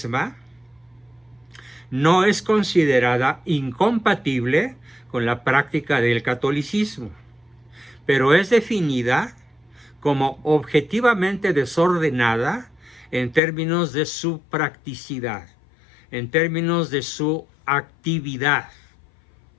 no es considerada incompatible con la práctica del catolicismo, pero es definida como objetivamente desordenada en términos de su practicidad, en términos de su actividad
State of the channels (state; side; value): drops out; right; at 13.4 s